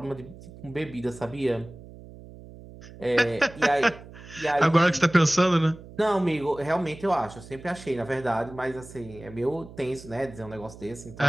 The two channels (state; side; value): noise; right; hum, 17 dB below the sound